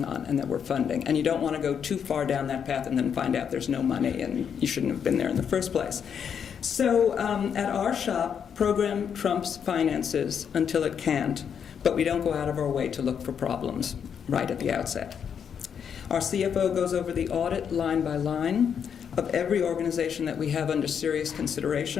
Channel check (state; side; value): quieter; right; 7.6 dB